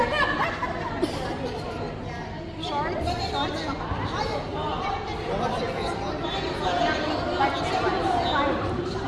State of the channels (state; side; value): identical; both; correlation 1.00